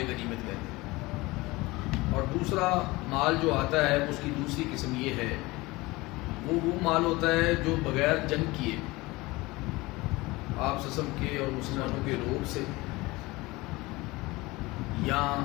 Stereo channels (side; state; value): right; quieter; 21.6 dB